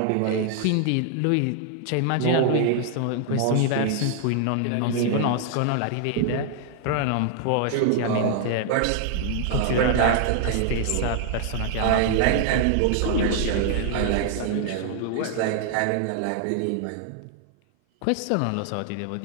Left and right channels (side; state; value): both; different; correlation 0.00